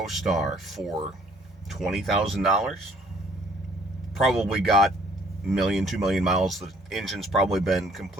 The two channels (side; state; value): both; normal; correlation 0.60